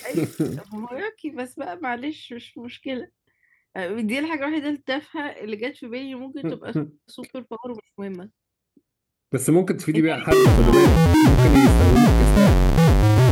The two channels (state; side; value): identical; both; correlation 1.00